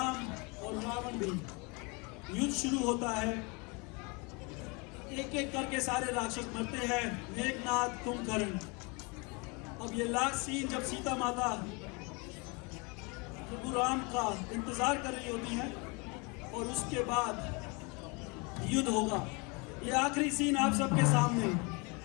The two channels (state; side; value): quieter; right; 29.8 dB